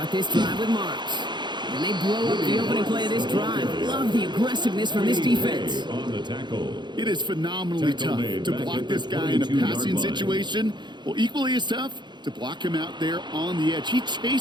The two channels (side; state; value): left; late; 0.21 ms